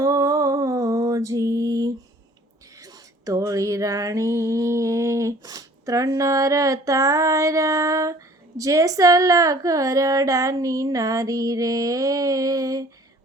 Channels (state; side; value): normal; both; correlation 0.52